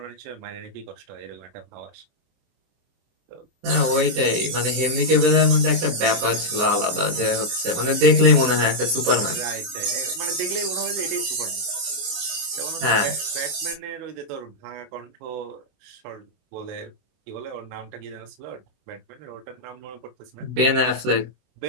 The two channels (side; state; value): left; late; 24 ms